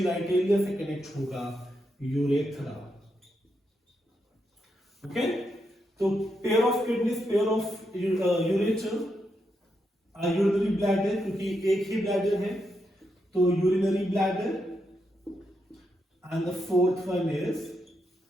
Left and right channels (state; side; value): normal; both; correlation 0.82